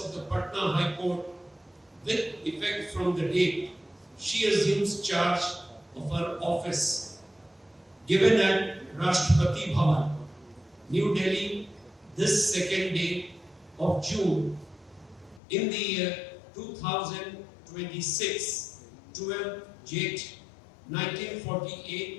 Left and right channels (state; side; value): drops out; right; at 15.4 s